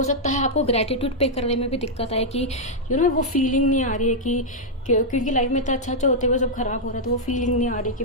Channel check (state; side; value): normal; both; correlation -0.05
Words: सकता है आपको ग्रैटिट्यूड पे करने में भी दिक्कत आए कि वो फीलिंग नहीं आ रही है कि क्योंकि लाइफ में इतना अच्छा होते हुए सब खराब हो रहा है, तो वो फीलिंग नहीं आ रही कि